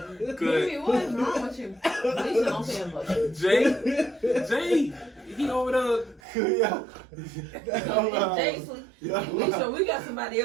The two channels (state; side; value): drops out; left; at 6.2 s